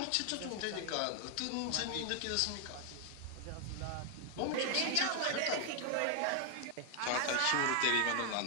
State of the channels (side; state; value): both; different; correlation 0.00